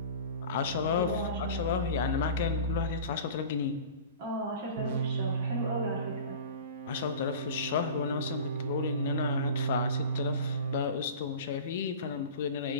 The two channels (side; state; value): both; inverted; correlation -0.37